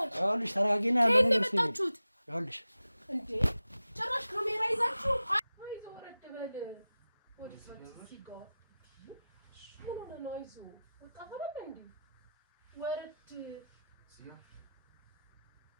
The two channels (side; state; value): both; inverted; correlation -0.93